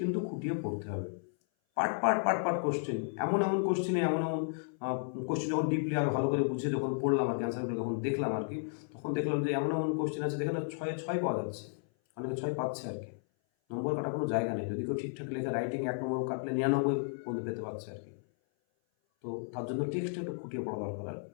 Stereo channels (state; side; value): silent; right; 56 dB below the other